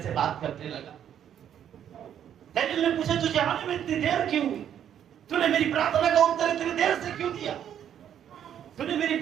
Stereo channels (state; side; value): quieter; left; 9.7 dB